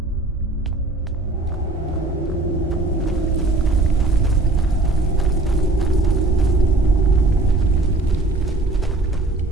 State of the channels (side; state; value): left; quieter; 3.0 dB